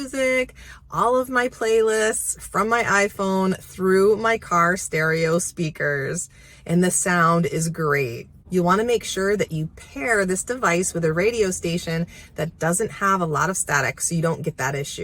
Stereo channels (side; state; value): both; identical; correlation 1.00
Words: all of my playlists from my iPhone through my car stereo speakers, and the sound is great. You want to make sure that you pair this device with a radio station that doesn't have a lot of static so you don't get that